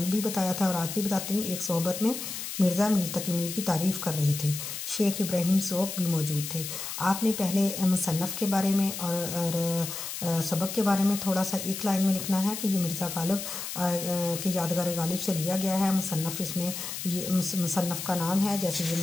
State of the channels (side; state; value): left; noise; hiss, 7 dB below the sound